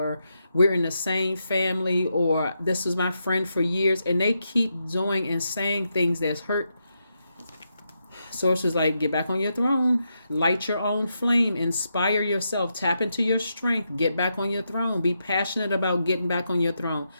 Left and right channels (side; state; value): both; inverted; correlation -0.83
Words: we're in the same family, or this was my friend for years, and they keep doing and saying things that's hurt. Source is like, get back on your throne, light your own flame, inspire yourself, tap into your strength, get back on your throne, be passionate about getting back on your throne.